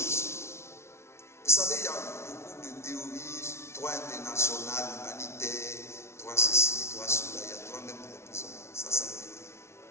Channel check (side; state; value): right; late; 0.13 ms